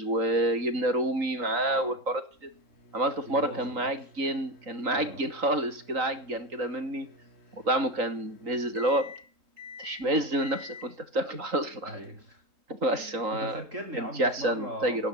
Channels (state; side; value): late; left; 3.9 ms